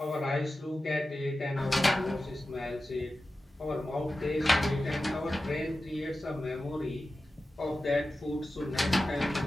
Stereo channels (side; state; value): both; normal; correlation 0.94